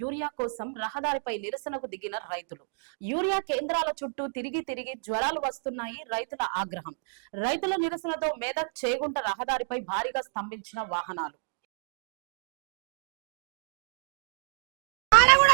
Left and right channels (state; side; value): silent; left; 58 dB below the other